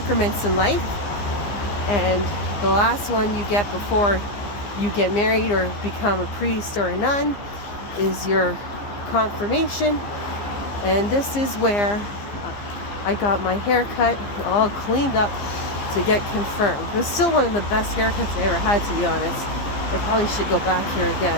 in life, and the last one you get before you get married or become a priest or a nun is your confirmation. And this is where I got my haircut all cleaned up to get confirmed. It was still one of the best haircuts I ever had, to be honest. I probably should go back here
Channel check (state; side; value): late; right; 15 ms